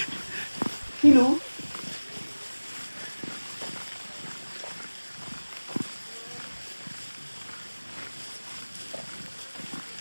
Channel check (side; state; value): both; inverted; correlation -1.00